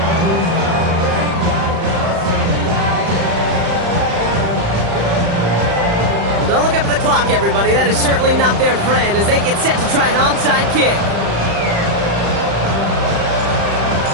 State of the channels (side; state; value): left; late; 35 ms